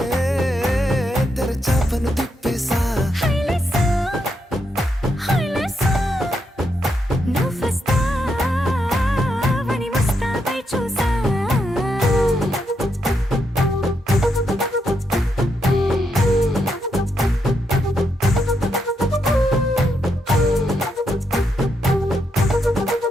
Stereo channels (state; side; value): normal; both; correlation 0.81